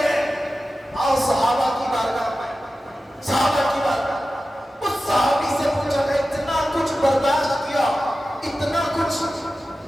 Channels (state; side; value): normal; both; correlation 0.94